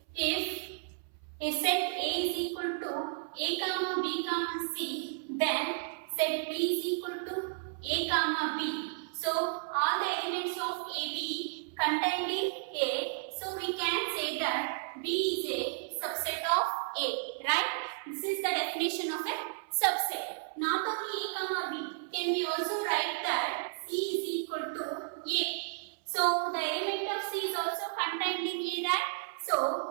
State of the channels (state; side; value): silent; left; 56 dB below the other